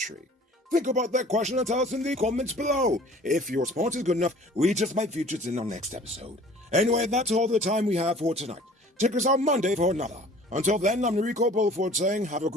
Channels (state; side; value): normal; both; correlation 0.49